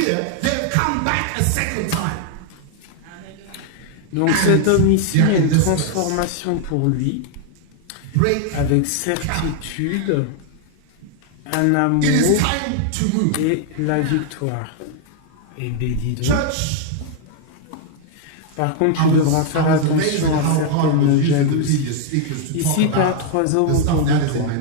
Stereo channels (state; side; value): different; both; correlation 0.00